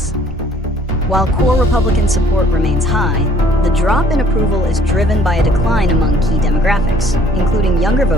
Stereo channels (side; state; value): both; normal; correlation 0.58